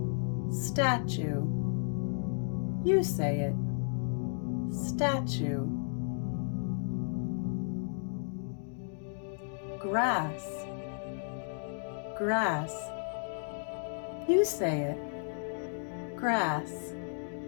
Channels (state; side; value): silent; right; digital silence